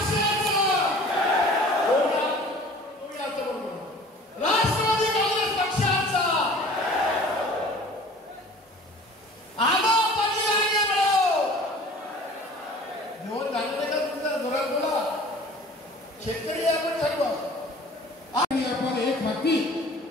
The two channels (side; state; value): both; normal; correlation 0.46